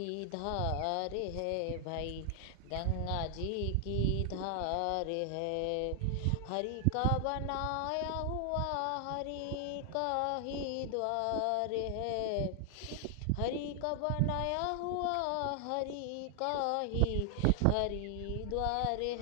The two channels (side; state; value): both; different; correlation 0.00